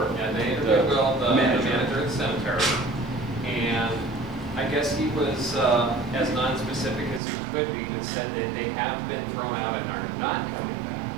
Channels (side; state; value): left; drops out; at 7.2 s